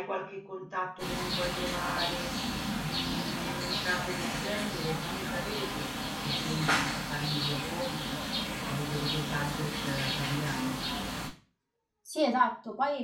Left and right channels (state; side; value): identical; both; correlation 1.00